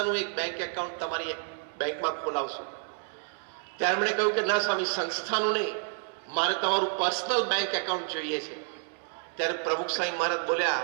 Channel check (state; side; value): silent; left; 58 dB below the other